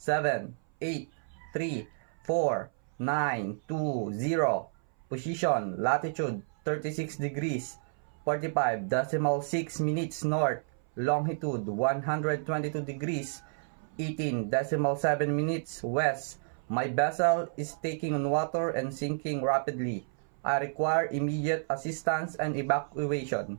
8 3 4 9 2 0. Position latitude 36 degrees 45.6 minutes north. Longitude 122 degrees 18.7 minutes west. My vessel is taking on water and sinking rapidly. I require immediate assistance and evacuation.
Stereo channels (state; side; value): silent; left; 57 dB below the other